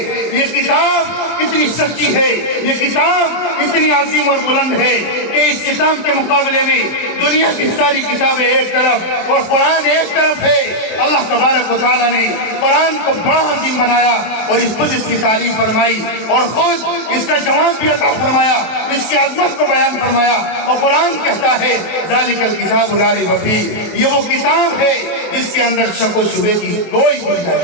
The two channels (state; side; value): late; right; 23 ms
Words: یہ کتاب کتنی سچی ہے، یہ کتاب اتنی عظیم اور بلند ہے کہ اس کتاب کے مقابلے میں دنیا کی ساری کتابیں ایک طرف اور قرآن ایک طرف ہے۔ اللہ تبارک و تعالیٰ نے قرآن کو بڑا عظیم بنایا اور خود اس کی تعریف فرمائی اور خود اس کا جواب بھی عطا فرمایا، اس کی عظمت کو بیان فرمایا، اور قرآن کہتا ہے ذالک الکتاب لا ریب فیہ، یہ وہ کتاب ہے جس کے اندر شک و شبے کی کوئی